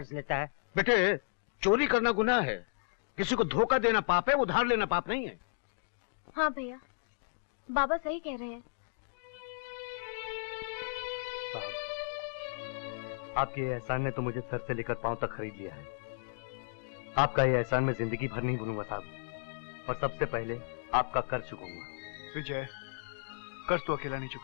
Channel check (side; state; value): right; silent; digital silence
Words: लेता है। बेटे, चोरी करना गुनाह है, किसी को धोखा देना पाप है, उधार लेना पाप नहीं है। हाँ भैया, बाबा सही कह रहे हैं। आपके ये एहसान ने तो मुझे सर से लेकर पांव तक खरीद लिया है। आपका ये एहसान मैं जिंदगी भर नहीं भूलूंगा साहब, और सबसे पहले आपका कर्ज चुकाऊंगा। विजय, कर्ज तो अकेला नहीं